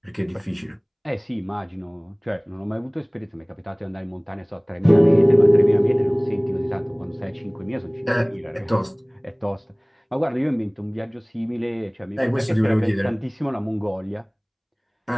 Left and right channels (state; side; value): identical; both; correlation 1.00